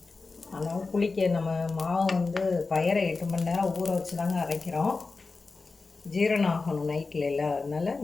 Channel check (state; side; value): quieter; right; 4.0 dB